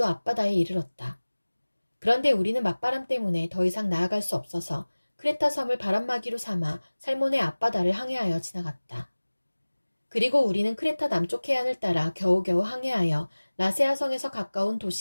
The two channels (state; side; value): inverted; both; correlation -1.00